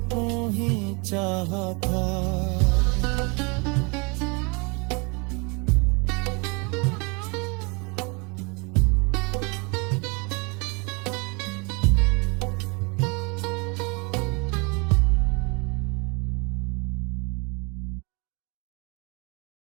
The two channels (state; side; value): quieter; left; 30.8 dB